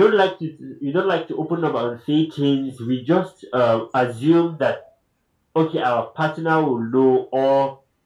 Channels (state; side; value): identical; both; correlation 1.00